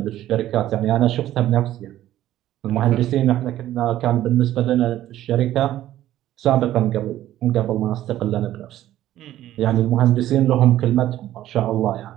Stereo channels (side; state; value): left; quieter; 13.4 dB